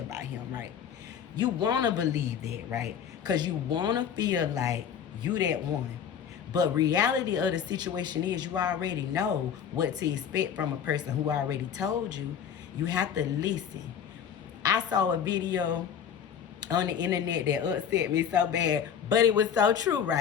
him, right? You want to believe that, right? Because you want to feel like you that one. But reality of the situation is you already know what to expect from a person who already told you. You have to listen. I saw a video on the internet that upset me so bad, but it was so true,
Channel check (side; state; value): right; quieter; 8.2 dB